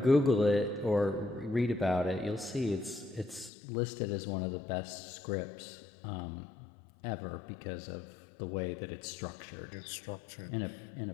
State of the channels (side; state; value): right; drops out; at 3.5 s